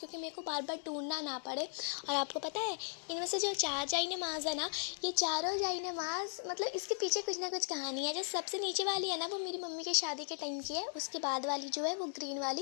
मेरे को बार बार ढूंढना ना पड़े। और आपको पता है, इनमें से जो 4 जाई नमाज़ है ना, ये चारों जाई नमाज़, मतलब इसके पीछे कुछ ना कुछ कहानी है। जो सबसे नीचे वाली है ना, वो मेरी मम्मी के शादी के टाइम की है। उसके बाद वाली जो है वो ग्रीन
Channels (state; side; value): silent; right; digital silence